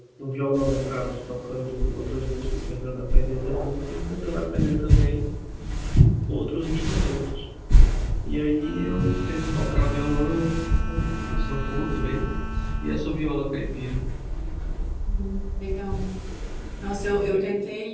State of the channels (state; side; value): identical; both; correlation 1.00